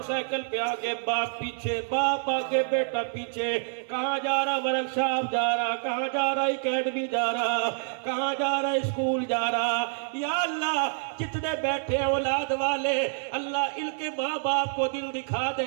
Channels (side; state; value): left; silent; 60 dB below the other